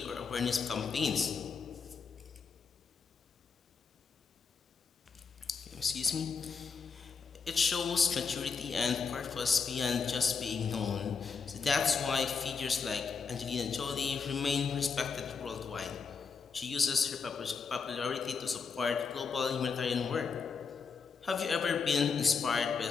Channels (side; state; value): right; quieter; 5.4 dB